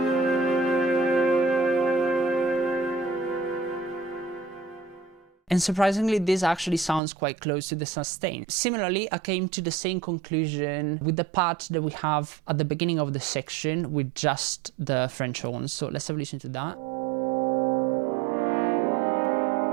And surprisingly, this actually sounds quite close to the sustain. Similarly, I came to the same conclusion with the part that we have at the beginning of the section with just the French horns. So let's have a listen to that.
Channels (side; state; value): left; drops out; at 7.0 s